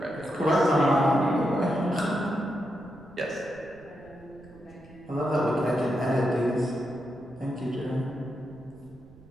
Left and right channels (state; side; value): noise; right; rumble, 23 dB below the sound